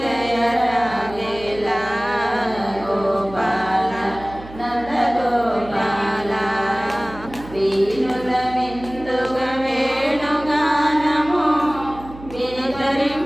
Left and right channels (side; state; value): right; noise; hum, 16 dB below the sound